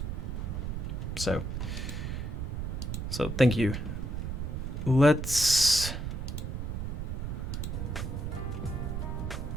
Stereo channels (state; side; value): noise; right; rumble, 3 dB below the sound